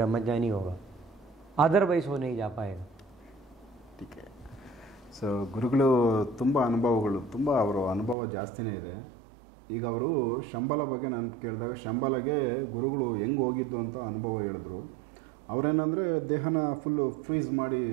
होगा, अदरवाइज वो नहीं जा पाएगा। ठीक है। ಸೊ ಗುರುಗಳು ತುಂಬ ಅನುಭವಗಳು, ತುಂಬ ಅವರ ಅನುಭವ ಜಾಸ್ತಿನೇ ಇದೆ. ಈಗ ಅವರು ಶಂಬಲ ಬಗ್ಗೆ ನಾನು ಕೇಳಿದಾಗ ಶಂಬಲಗೆ ಗುರುಗಳು ಹೆಂಗೆ ಹೋಗಿದ್ದು ಅಂತ ಅನುಭವ ಹೇಳಿದ್ರು. ಅವರೇನಂದರೆ ದೇಹನ ಫುಲ್ಲು ಫ್ರೀಸ್ ಮಾಡಿ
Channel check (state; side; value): drops out; left; at 8.2 s